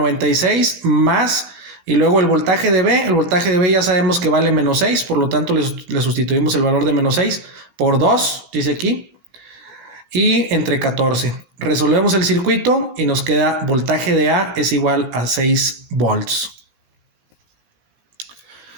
más, y luego el voltaje de B ya sabemos que vale menos 6, por lo tanto le sustituimos el valor de menos 6 por 2, dice aquí, y entre 14. Resolvemos el circuito y nos queda voltaje de A es igual a 6 volts.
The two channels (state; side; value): late; left; 17 ms